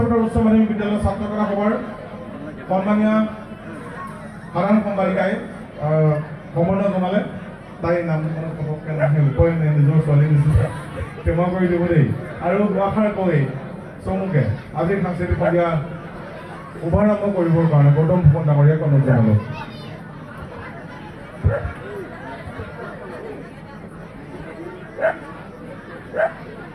উচ্চ মাধ্যমিক বিদ্যালয়ৰ ছাত্ৰ একতা সভাৰ সন্মানীয় সাধাৰণ সম্পাদিকাই সম্বৰ্ধনা জনালে। তাইৰ নাম পটককৈ নাহে, উপায় নাই, নিজৰ ছোৱালী নিচিনা ক্ষমা কৰি দিব দেই। আৰু দুআষাৰ কৈ চমুকে আজিৰ সাংস্কৃতিক সন্ধিয়া শুভাৰম্ভ কৰিবৰ কাৰণে গৌতম ফুকন ডাঙৰীয়াক অনুৰোধ জনালোঁ।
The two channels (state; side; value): identical; both; correlation 1.00